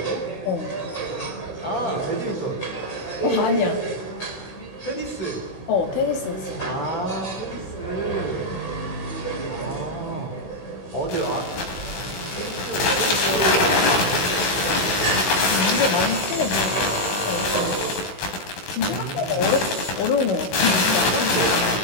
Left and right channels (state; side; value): late; right; 16 ms